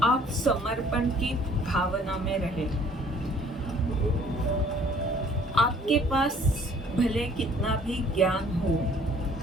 आप समर्पण की भावना में रहें। आप आपके पास भले कितना भी ज्ञान हो,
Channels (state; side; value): normal; both; correlation 0.56